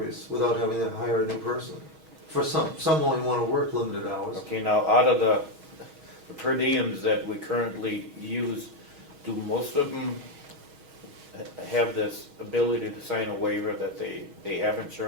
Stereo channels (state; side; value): late; left; 6.3 ms